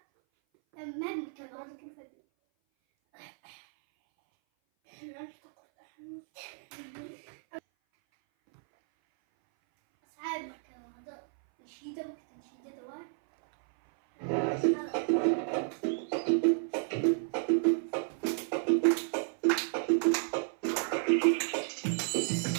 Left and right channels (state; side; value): silent; left; 56 dB below the other